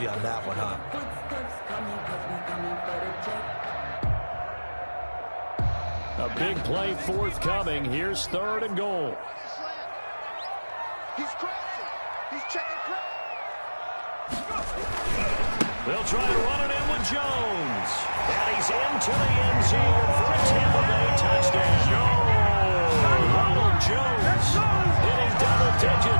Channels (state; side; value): inverted; both; correlation -1.00